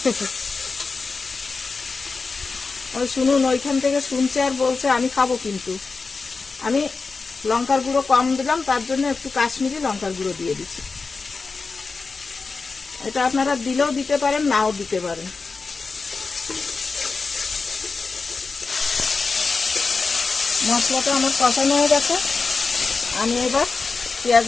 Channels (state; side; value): quieter; right; 4.4 dB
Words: শুনুন, ওইখান থেকে শুনছে আর বলছে আমি খাবো কিন্তু। আমি লঙ্কার গুঁড়ো কম দিলাম, তার জন্য একটু কাশ্মীরি লঙ্কার গুঁড়ো দিয়ে দিচ্ছি। এটা আপনারা দিলেও দিতে পারেন, নাও দিতে পারেন। মশলাটা আমার কষানো হয়ে গেছে, আমি এবার